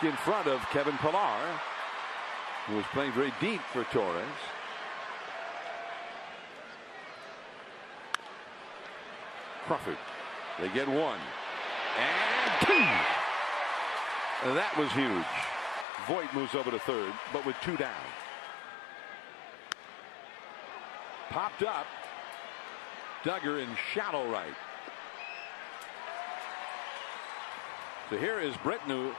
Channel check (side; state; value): right; drops out; at 15.9 s